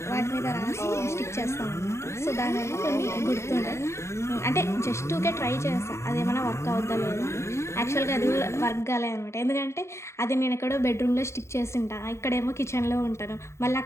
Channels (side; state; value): right; late; 0.13 ms